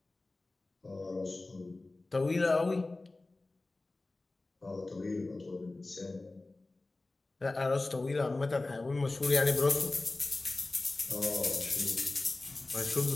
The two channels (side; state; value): right; quieter; 3.1 dB